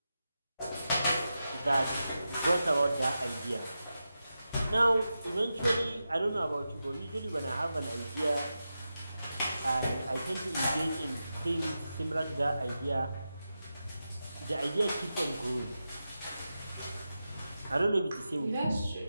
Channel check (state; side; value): inverted; both; correlation -0.90